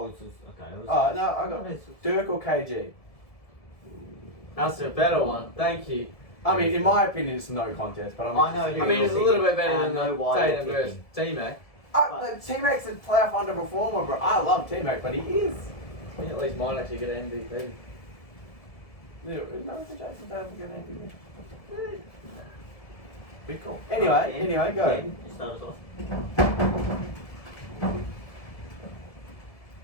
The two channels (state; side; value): late; right; 1.7 ms